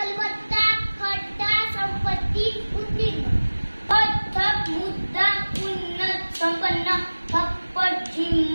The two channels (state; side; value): inverted; both; correlation -1.00